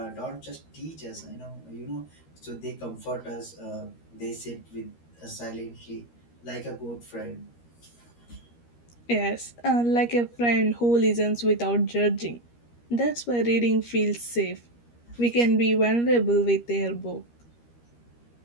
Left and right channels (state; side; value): late; right; 13 ms